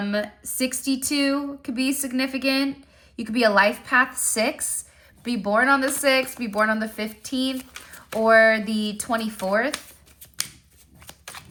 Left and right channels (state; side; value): identical; both; correlation 1.00